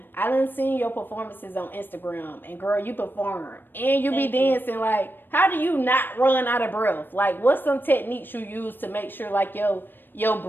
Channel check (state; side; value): late; right; 0.095 ms